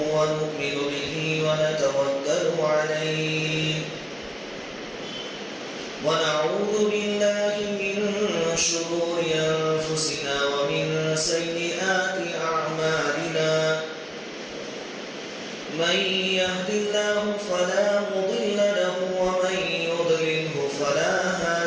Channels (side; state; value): both; identical; correlation 1.00